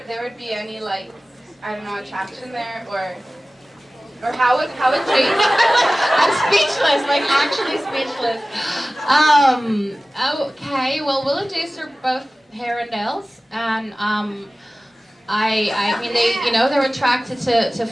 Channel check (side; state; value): both; normal; correlation 0.97